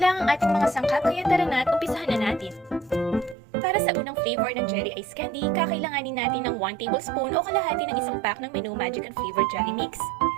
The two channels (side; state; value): left; drops out; at 3.4 s